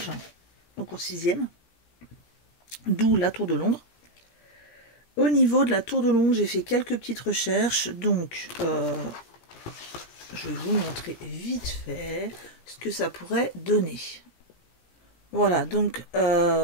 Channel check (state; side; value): late; right; 17 ms